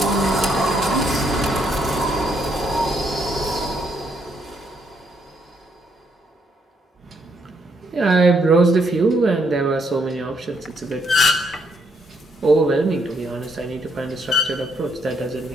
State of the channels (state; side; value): normal; both; correlation 0.73